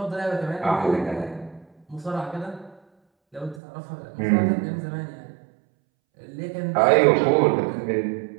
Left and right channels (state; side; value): drops out; left; at 3.6 s